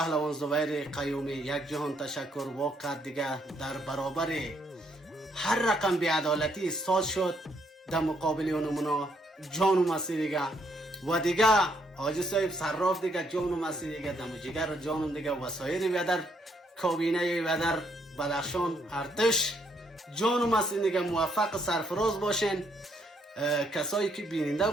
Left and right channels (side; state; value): both; normal; correlation 0.72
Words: زبیر قیومی یک جهان تشکر. واقعا دیگه در برابر هر رقم بی‌عدالتی ساز شد در مقابل اونمونا جانم هستی دیگه. و دیگه حاجی صاحب صراف دیگه جانم هستی دیگه، دم جگر جانم دیگه. وسایر بیادر کابینه بیادر بدخشان ارتش جانم هستی دیگه. موفق سرفراز باشین. کسایی که بیننده